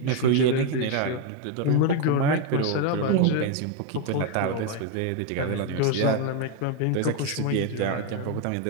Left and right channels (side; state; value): both; different; correlation 0.01